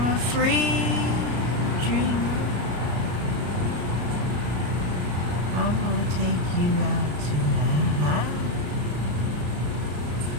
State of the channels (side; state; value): left; late; 33 ms